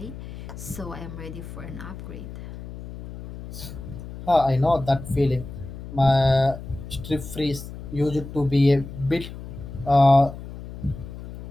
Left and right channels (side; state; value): left; noise; hum, 12 dB below the sound